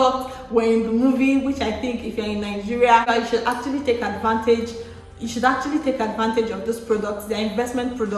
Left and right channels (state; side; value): identical; both; correlation 1.00